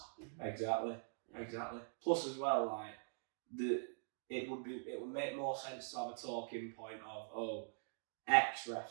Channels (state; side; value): silent; left; digital silence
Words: Exactly. Exactly. Plus, as well, like it would make more sense to have a talking point of X